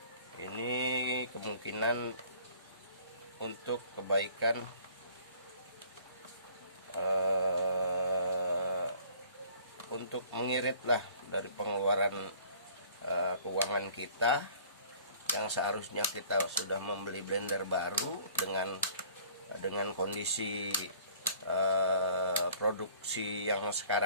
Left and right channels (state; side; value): inverted; both; correlation -0.53